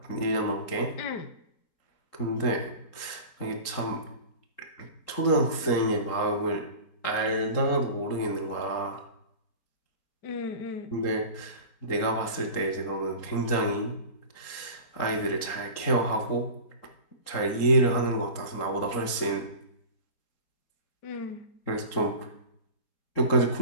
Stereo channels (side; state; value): right; late; 3.8 ms